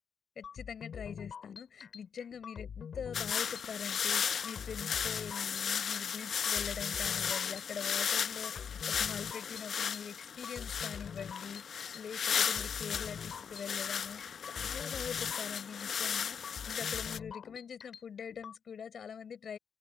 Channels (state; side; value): quieter; right; 7.1 dB